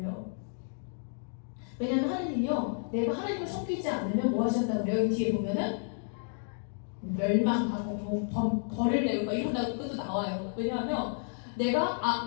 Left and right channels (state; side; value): silent; right; 57 dB below the other